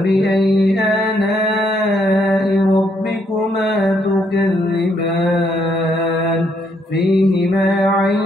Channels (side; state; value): both; normal; correlation 0.72